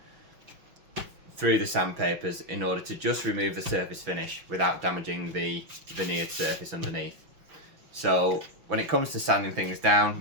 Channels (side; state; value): left; late; 5.9 ms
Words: through the sandpapers in order to just remove the surface finish without damaging the veneered surface underneath. So when it comes to sanding things down,